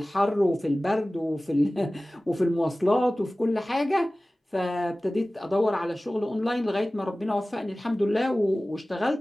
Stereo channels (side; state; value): both; normal; correlation 0.97